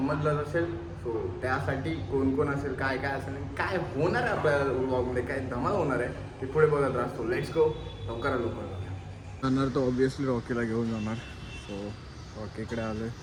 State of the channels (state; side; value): identical; both; correlation 1.00